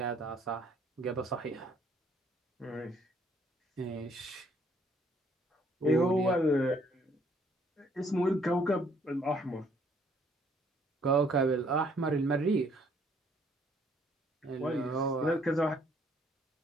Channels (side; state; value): both; normal; correlation 0.64